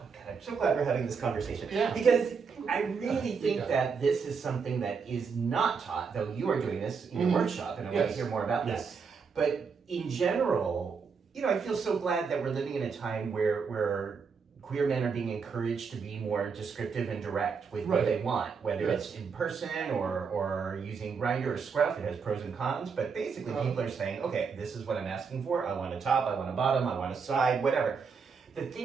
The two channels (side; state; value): left; quieter; 5.6 dB